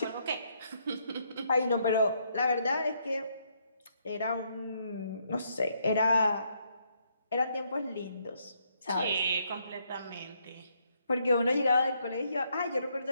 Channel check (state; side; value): inverted; both; correlation -0.73